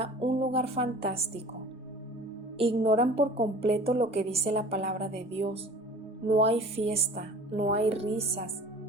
un lugar fantástico. Ignoran por completo lo que dice la palabra de Dios. No hay fiesta, no hay risas,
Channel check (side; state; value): both; normal; correlation 0.44